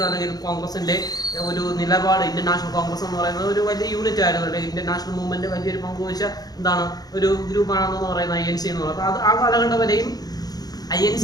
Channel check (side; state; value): right; late; 0.19 ms